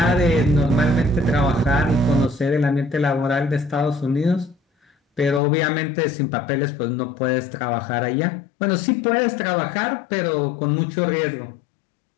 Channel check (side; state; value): right; drops out; at 5.4 s